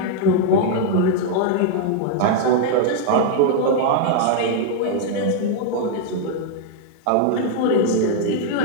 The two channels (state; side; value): different; both; correlation 0.00